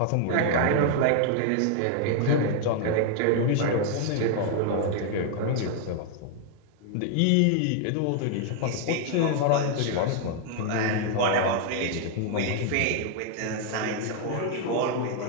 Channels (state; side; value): different; both; correlation 0.00